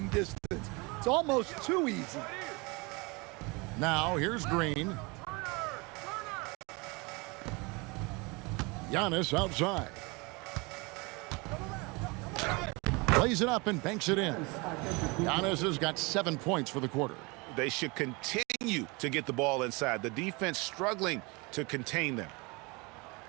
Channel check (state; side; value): quieter; left; 27.3 dB